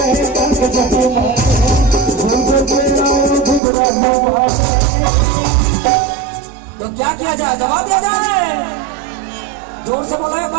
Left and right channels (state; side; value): drops out; left; at 3.6 s